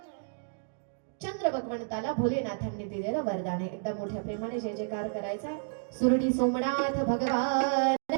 चंद्र भगवंताला भोलेनाथांनी दिलेलं वरदान आहे. एकदा मोठ्या प्रेमाने जय जयकार करायचा. सुरडी सोमनाथ भगवान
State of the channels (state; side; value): silent; left; digital silence